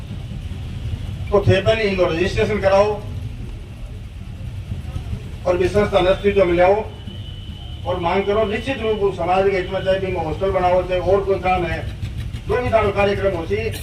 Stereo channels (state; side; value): identical; both; correlation 1.00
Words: तो थे पहले इनको रजिस्ट्रेशन कराओ और भी संस्था अस्तित्व में लाओ और मांग करो। निश्चित रूप से समाज के हित में चाहे भी हॉस्टल बनाओ, चाहे और कोई काम है, जो भी तारो कार्यक्रम होती